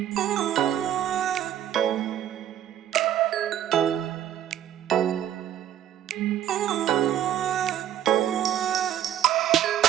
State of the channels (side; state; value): left; quieter; 11.0 dB